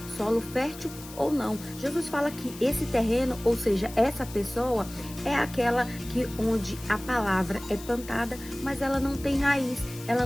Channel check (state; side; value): noise; left; hiss, 16 dB below the sound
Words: solo fértil ou não. Jesus fala que esse terreno, ou seja, essa pessoa, é aquela que onde a palavra é plantada, mas ela não tem raiz, ela